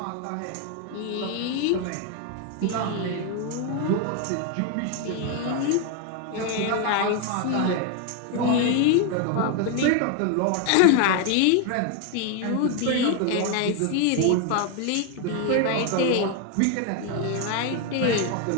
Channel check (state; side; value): different; both; correlation 0.01